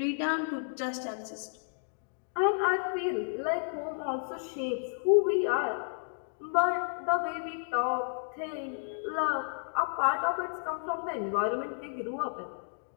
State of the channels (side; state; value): right; silent; digital silence